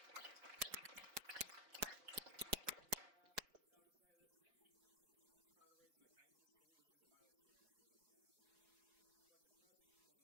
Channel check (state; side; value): late; left; 4.7 ms